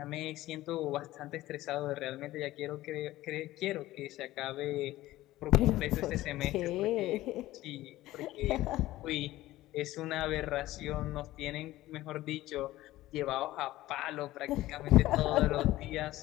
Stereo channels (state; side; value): quieter; right; 16.2 dB